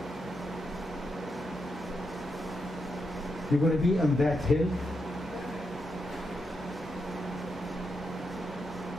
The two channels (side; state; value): both; normal; correlation 0.84